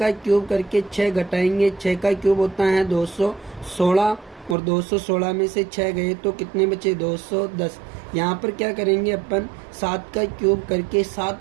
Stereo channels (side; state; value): left; drops out; at 4.5 s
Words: क्यूब करके 6 घटाएंगे, 6 का क्यूब होता है 216 और 216 में से 6 गए तो कितने बचे, 210। यहाँ पर क्या करेंगे अपन, 7 का क्यूब करके